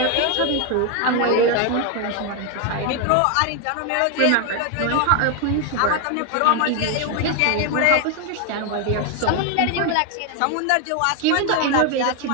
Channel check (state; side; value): different; both; correlation 0.01